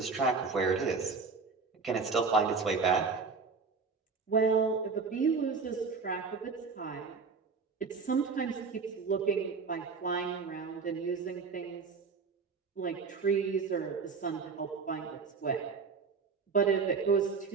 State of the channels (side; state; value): left; quieter; 4.9 dB